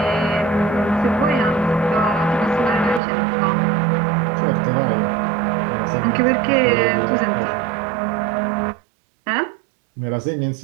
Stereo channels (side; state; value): left; drops out; at 3.0 s